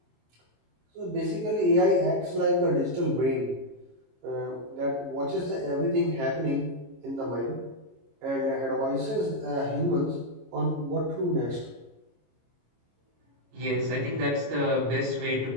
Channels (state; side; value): late; left; 26 ms